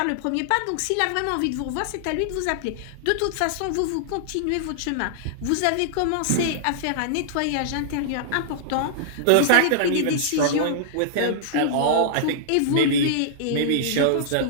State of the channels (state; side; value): different; both; correlation -0.01